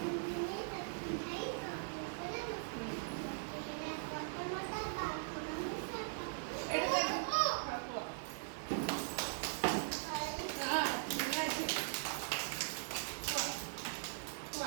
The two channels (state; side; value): silent; left; digital silence